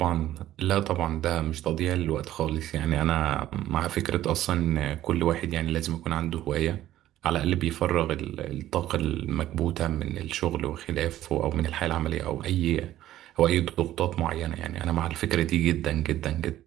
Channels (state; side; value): quieter; left; 13.6 dB